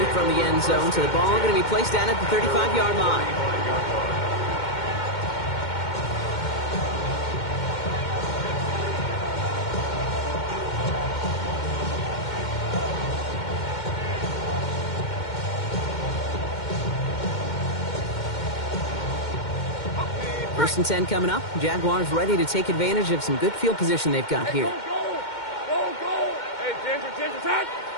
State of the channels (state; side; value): late; right; 2.1 ms